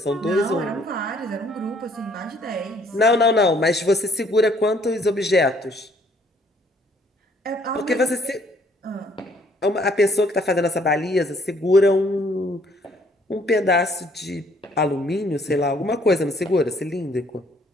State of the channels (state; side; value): normal; both; correlation 0.63